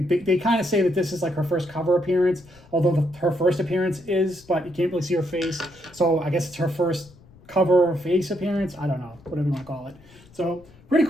kind of say that this is like her first cover appearance, although her first appearance is, but you can't really see her face. So I guess it's her first cover face appearance. I don't know, whatever you want to call it. So pretty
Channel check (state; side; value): noise; left; rumble, 25 dB below the sound